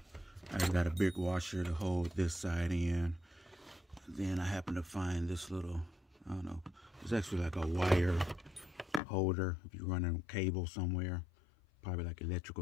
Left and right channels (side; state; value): right; drops out; at 9.0 s